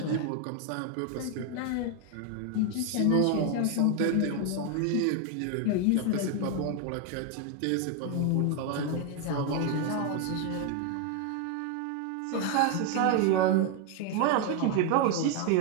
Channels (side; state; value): both; different; correlation 0.01